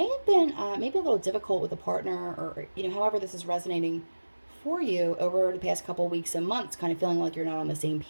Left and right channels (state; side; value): inverted; both; correlation -1.00